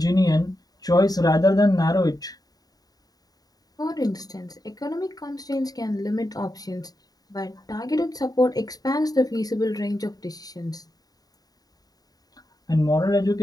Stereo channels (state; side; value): late; right; 0.18 ms